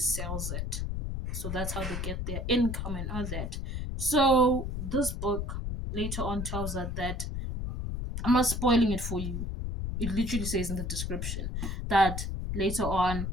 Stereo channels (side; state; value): left; noise; rumble, 3 dB below the sound